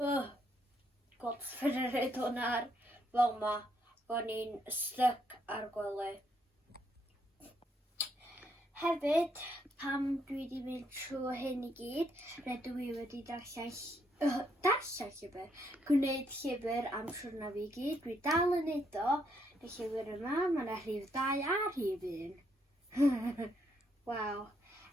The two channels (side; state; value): both; normal; correlation 0.74